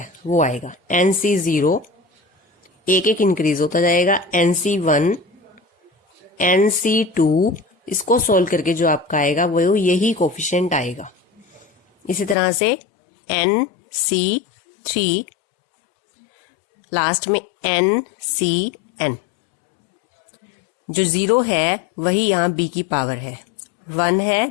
वो आएगा NC0, एक एक इंक्रीज होता जाएगा, NC1, NC2, इसको सोल्व करके जो आपका आएगा वो यही कोफिशिएंट आएगा। इसी तरह से NC3, लास्ट में NCN। जो 0 है वही यहाँ b की पावर है, 1 है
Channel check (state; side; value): drops out; right; at 12.4 s